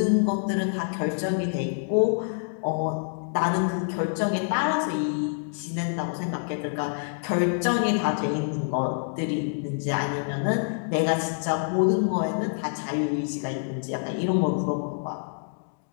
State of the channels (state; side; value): silent; right; digital silence